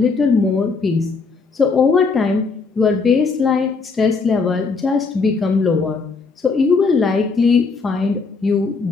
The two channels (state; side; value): quieter; right; 4.6 dB